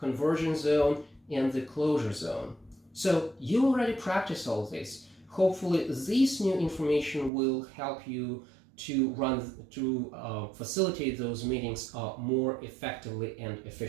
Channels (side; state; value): left; drops out; at 7.3 s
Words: zone, and the closure zone. So you already practice all this. Hopefully this new information will help you to facilitate those meetings more effectively and